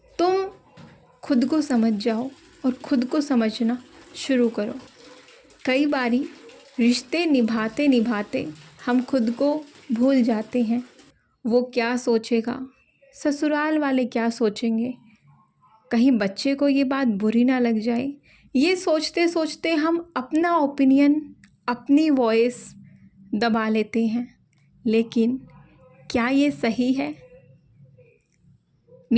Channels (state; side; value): identical; both; correlation 1.00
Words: तुम खुद को समझ जाओ और खुद को समझना शुरू करो। कई बारी रिश्ते निभाते निभाते हम खुद को भूल जाते हैं। वो क्या सोचेगा, ससुराल वाले क्या सोचेंगे, कहीं बच्चे को ये बात बुरी ना लग जाए, ये सोचते सोचते हम अपना ओपिनियन, अपनी वॉइस दबा लेते हैं। लेकिन क्या ये सही है?